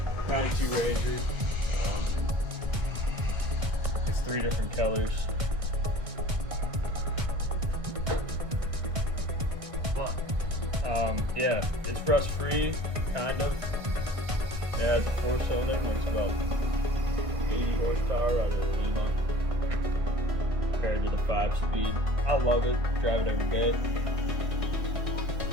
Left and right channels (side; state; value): left; late; 1.6 ms